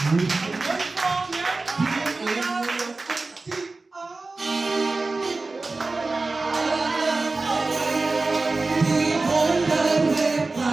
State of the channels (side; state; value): left; quieter; 3.5 dB